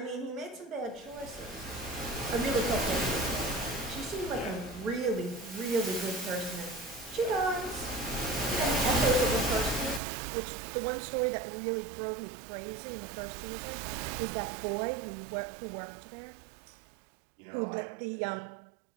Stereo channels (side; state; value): left; drops out; at 10.0 s